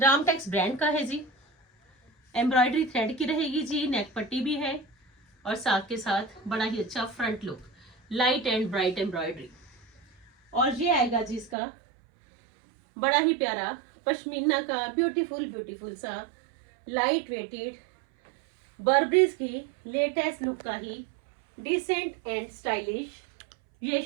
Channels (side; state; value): left; drops out; at 11.6 s